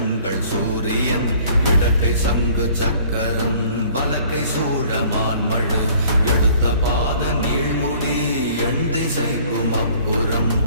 சூரியன் இடக்கை சங்கு சக்கரம் வலக்கை சூழமான்மழு எடுத்த பாத நீழ்முடி எண் திசைக்கும் அப்புறம்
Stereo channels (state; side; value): inverted; both; correlation -0.54